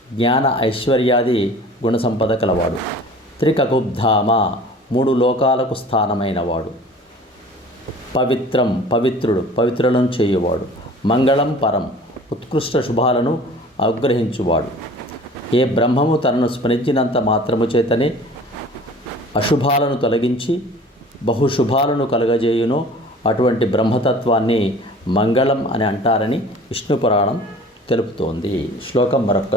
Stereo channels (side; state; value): both; normal; correlation 0.45